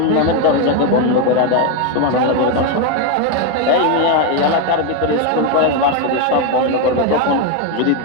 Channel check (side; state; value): both; different; correlation 0.02